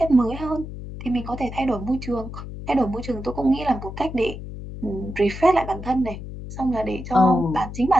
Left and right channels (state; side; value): noise; left; hum, 10 dB below the sound